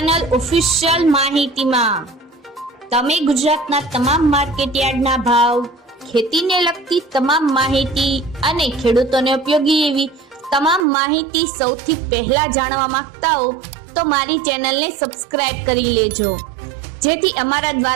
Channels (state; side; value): drops out; left; at 10.9 s